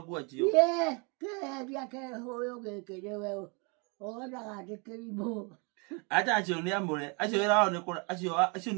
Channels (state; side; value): quieter; left; 33.0 dB